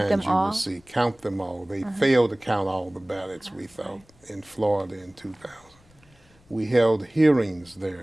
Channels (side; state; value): left; noise; rumble, 30 dB below the sound